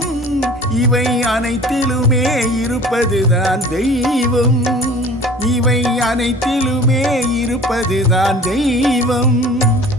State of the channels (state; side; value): normal; both; correlation 0.45